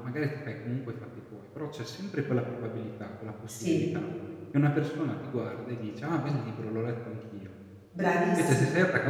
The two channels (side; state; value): both; identical; correlation 1.00